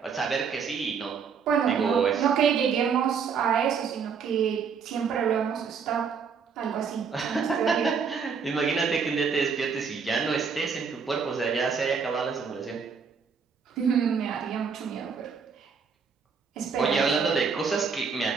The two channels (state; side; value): quieter; left; 6.0 dB